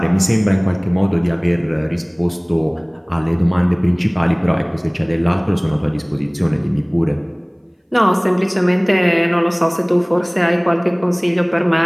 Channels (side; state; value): both; identical; correlation 1.00